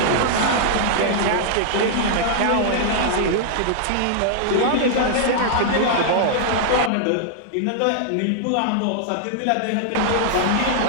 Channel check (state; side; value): different; both; correlation -0.01